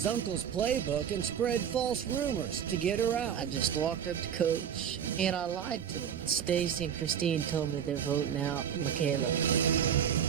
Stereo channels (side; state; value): left; quieter; 8.5 dB